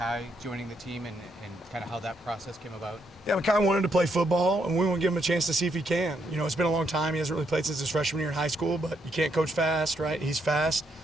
joining the team and kind of how that process came about? Yeah, Makai wanted to play football, and we want to give him a chance to see if he can. You know, it's been a long time. He hasn't really played since his freshman year in high school, but you can't coach fast, right? He's fast.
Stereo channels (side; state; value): both; normal; correlation 0.76